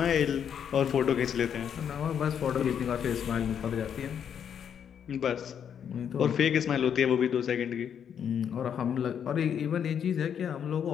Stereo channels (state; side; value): quieter; right; 8.3 dB